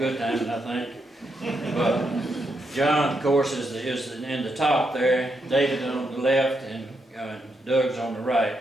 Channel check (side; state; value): both; normal; correlation 0.81